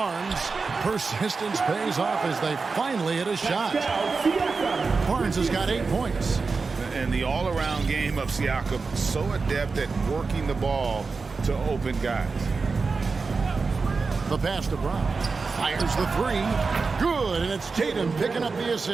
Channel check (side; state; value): left; quieter; 4.4 dB